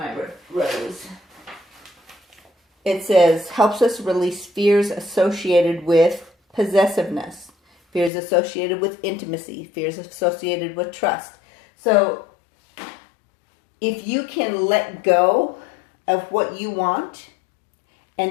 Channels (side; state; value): right; drops out; at 8.1 s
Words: rose? It says, helps us release fears associated with possessiveness, fears associated with intimacy, fears associated with trust. So if you can let go of what you want